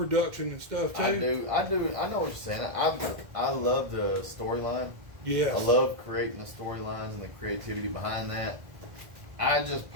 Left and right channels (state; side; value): late; left; 1.5 ms